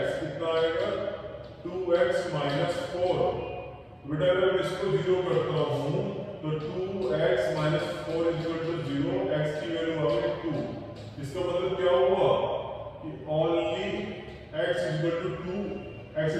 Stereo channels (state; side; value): identical; both; correlation 1.00